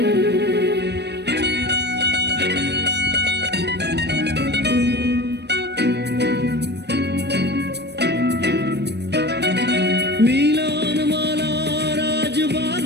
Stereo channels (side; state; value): left; late; 0.49 ms